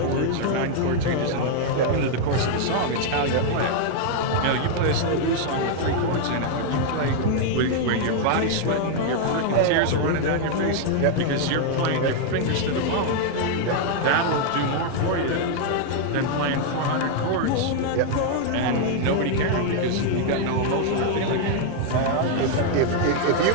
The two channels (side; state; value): both; different; correlation 0.00